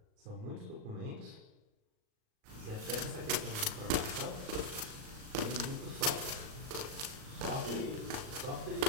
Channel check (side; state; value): left; late; 38 ms